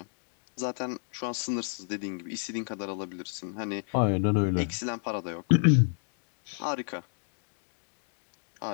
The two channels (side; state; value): right; silent; digital silence